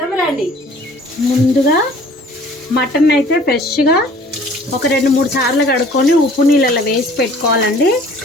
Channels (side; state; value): both; normal; correlation 0.52